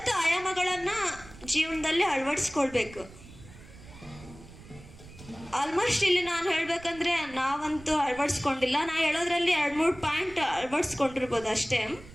ಆಯಾಮಗಳನ್ನ ಜೀವನದಲ್ಲಿ ಅಳವಡಿಸ್ಕೊಳ್ಬೇಕು. ಆಲ್ಮೋಸ್ಟ್ ಇಲ್ಲಿ ನಾನು ಹೇಳ್ಬೇಕಂದ್ರೆ ನಾವಂತೂ ಅಳವಡಿಸ್ಕೊಂಡಿಲ್ಲ. ನಾ ಹೇಳೋದ್ರಲ್ಲಿ 2-3 ಪಾಯಿಂಟ್ ಅಳವಡಿಸ್ಕೊಂಡಿರ್ಬೋದು ಅಷ್ಟೇ.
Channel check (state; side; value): noise; right; rumble, 19 dB below the sound